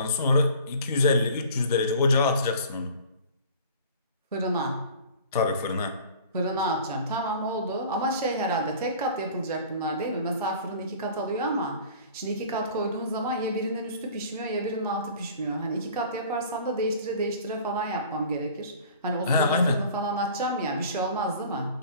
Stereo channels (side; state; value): both; inverted; correlation -0.45